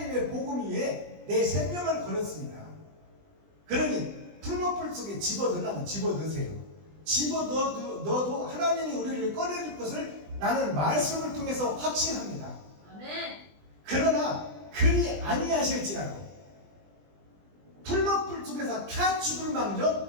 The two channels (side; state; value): left; late; 20 ms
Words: 복음 위에 내 생명을 걸었습니다. 그러니 풀무불 속에 집어넣으려면 집어넣으세요. 집어넣어도 하나님이 우리를 꺼내줄 것을 나는 말씀을 통해서 확신합니다. 아멘. 그러나 그리 아니하실지라도 풀무불 속에서 타 죽을